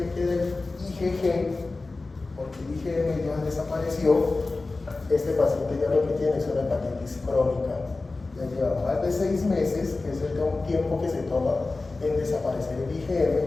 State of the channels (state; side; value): quieter; right; 3.5 dB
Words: queda el IgG, porque el IgM ya desapareció, este paciente ya lo que tiene es una hepatitis crónica. Ya lleva más de 6 meses, que es el tiempo que se toma en desaparecer el